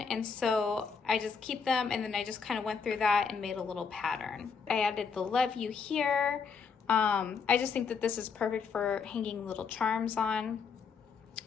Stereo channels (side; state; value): right; quieter; 5.7 dB